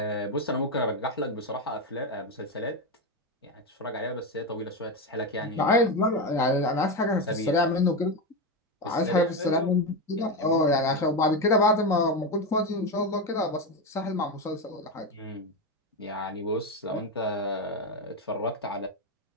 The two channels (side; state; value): both; normal; correlation 0.13